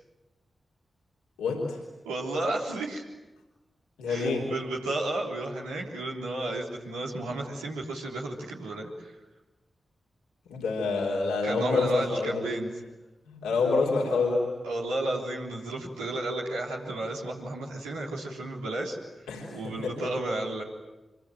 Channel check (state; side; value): normal; both; correlation 0.83